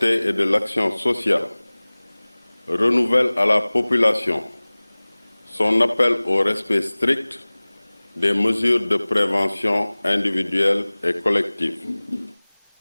et de l'Action sociale renouvelle à la population son appel au respect strict des mesures de prévention individuelles et collectives.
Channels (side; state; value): both; inverted; correlation -1.00